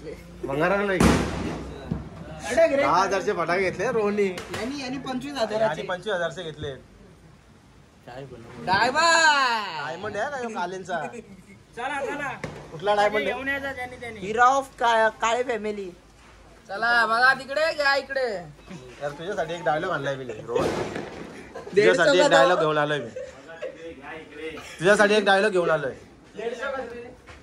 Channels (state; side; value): identical; both; correlation 1.00